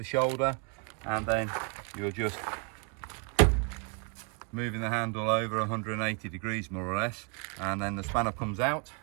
shoulder, and then you're just moving the handle over 180 degrees more or less, and then the spanner comes out.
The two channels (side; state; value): left; quieter; 34.4 dB